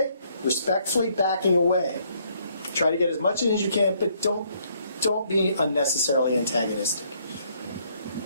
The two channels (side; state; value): both; inverted; correlation -0.68